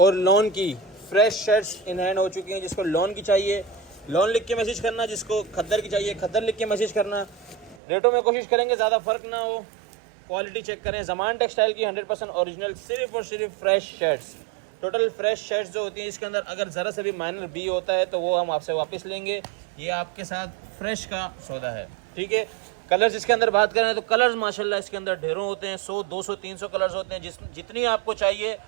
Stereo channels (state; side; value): drops out; left; at 7.8 s